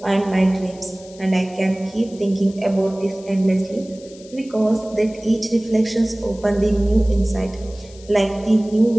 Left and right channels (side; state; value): left; noise; hiss, 23 dB below the sound